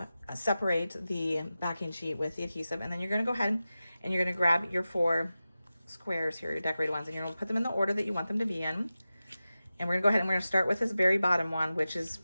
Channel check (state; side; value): inverted; both; correlation -0.94